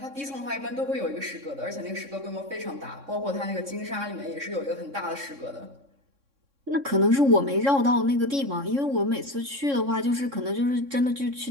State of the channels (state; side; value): late; left; 3.6 ms